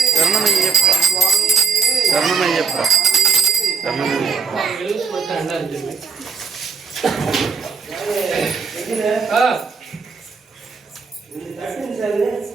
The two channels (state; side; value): quieter; left; 5.2 dB